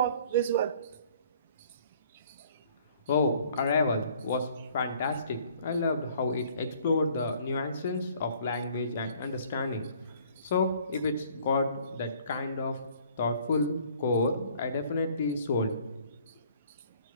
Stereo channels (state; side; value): inverted; both; correlation -0.56